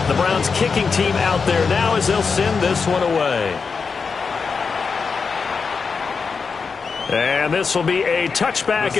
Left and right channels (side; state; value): right; quieter; 5.2 dB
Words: The Browns kicking team out there now as they'll send this one away. And this will be a touchback